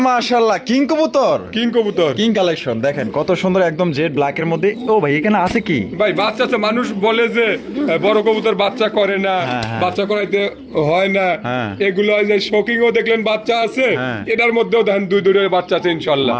মাশাআল্লাহ কিং কবুতর, কিং কবুতর কিং কালেকশন দেখেন কত সুন্দর একদম জেড ব্ল্যাক এর মধ্যে। ও ভাই এখানে আছে কি? ভাই বাচ্চা তো মানুষ বলে যে বড় কবুতর বাচ্চা করে না, হ্যাঁ, হ্যাঁ। বাচ্চা করাইতে হয় না, হ্যাঁ। এগুলো এই যে শোকিংও দেখলেন বাচ্চা আছে, হ্যাঁ। এটার মধ্যেও দেখেন দুইটা বাচ্চা আছে ইনশাল্লাহ।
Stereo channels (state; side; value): identical; both; correlation 1.00